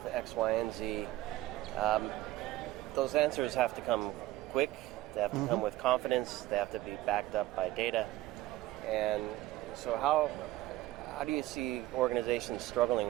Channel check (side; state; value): left; quieter; 16.5 dB